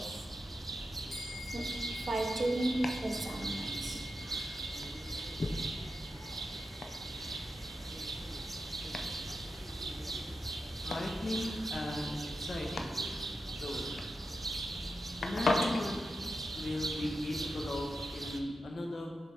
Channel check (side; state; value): both; normal; correlation 0.88